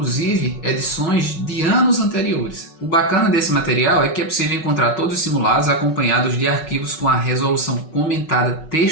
edições de anos anteriores. O bacana desse material é que é possível encontrar todos os simulados acompanhados de arquivos com a resolução comentada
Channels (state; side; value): late; right; 5.4 ms